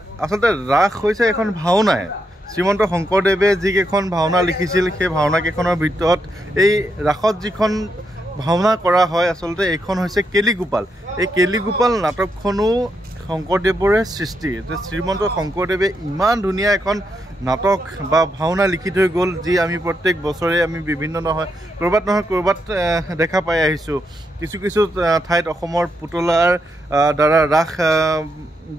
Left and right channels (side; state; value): both; normal; correlation 0.81